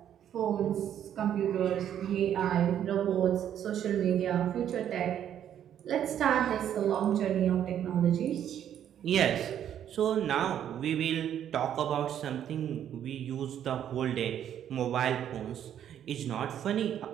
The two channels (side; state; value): left; quieter; 10.0 dB